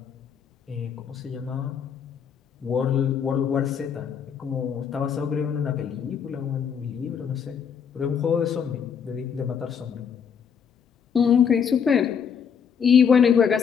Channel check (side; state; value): right; quieter; 7.2 dB